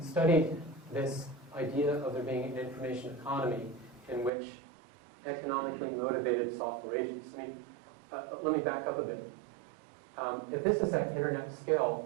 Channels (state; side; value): drops out; left; at 4.3 s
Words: studied this idea of there being an information economy in which economically motivated software agents. I mean, let me back up a bit. If this is at internet